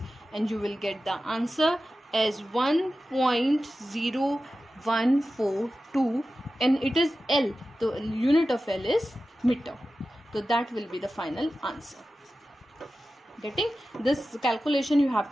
and you will get the answer as 1.0142, and it is L. The unit of L is meter. So that will be the final answer. Getting this calculation you have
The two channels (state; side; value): normal; both; correlation 0.94